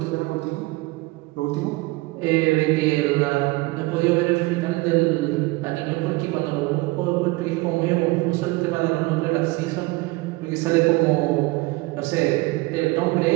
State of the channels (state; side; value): quieter; left; 22.3 dB